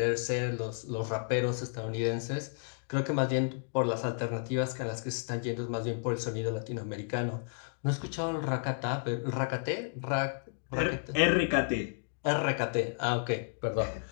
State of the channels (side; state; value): right; silent; digital silence